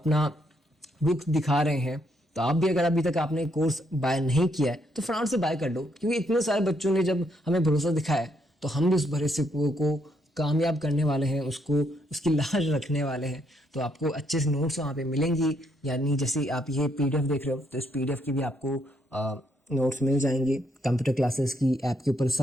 बुक दिखा रहे हैं। तो आप भी अगर अभी तक आपने कोर्स बाय नहीं किया है तो फटाफट से बाय कर लो, क्योंकि इतने सारे बच्चों ने जब हमें भरोसा दिखाया है तो हम भी उस भरोसे को कामयाब करने वाले हैं, उसको उसकी लाज रखने वाले हैं। तो आपको अच्छे से नोट्स वहाँ पे मिलेंगी, यानी जैसे आप ये PDF देख रहे हो तो इस PDF की भी आपको नोट्स मिल जाएंगे। कंप्यूटर क्लासेस की ऐप के ऊपर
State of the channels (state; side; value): normal; both; correlation 0.74